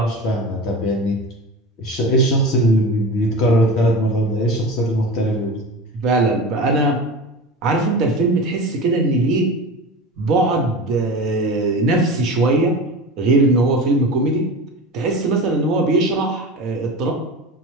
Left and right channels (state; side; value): normal; both; correlation 0.30